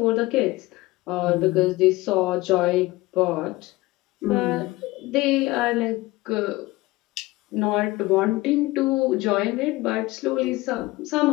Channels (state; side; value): quieter; right; 20.0 dB